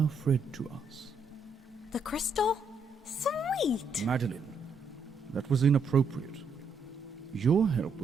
Fred to us. The crystal? Sweet! Madeline, that was inappropriate. Your help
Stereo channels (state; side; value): quieter; left; 3.5 dB